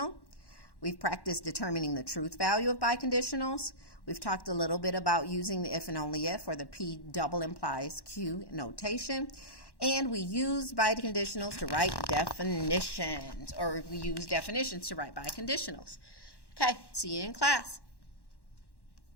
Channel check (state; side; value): late; right; 1.1 ms